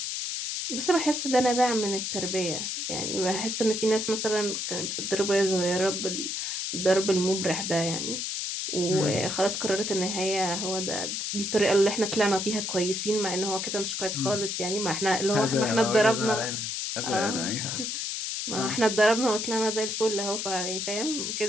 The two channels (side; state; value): left; noise; hiss, 3 dB below the sound